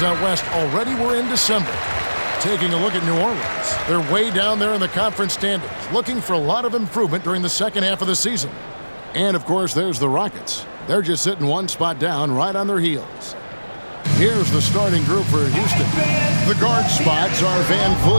out west. Already we're in December. Taking a look at New Orleans. They're way down there in the conference standings, looking for a lot of improvement during the second half of the season. And, of course, there's the Rockets. They're just sitting one spot down right on their heels. Here's the starting group for Houston. The guard spots are Van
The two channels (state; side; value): inverted; both; correlation -1.00